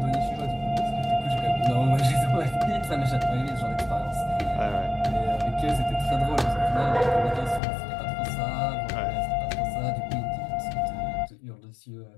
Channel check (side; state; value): right; drops out; at 7.6 s